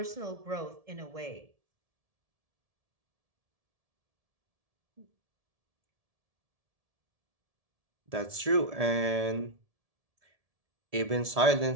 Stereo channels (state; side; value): late; left; 1.7 ms